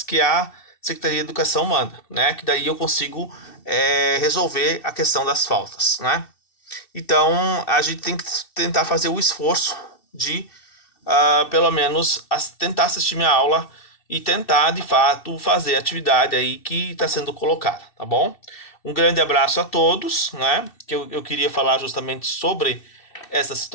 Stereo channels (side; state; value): right; late; 2.6 ms